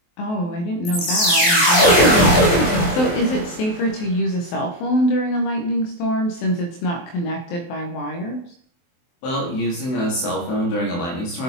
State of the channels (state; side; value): late; right; 23 ms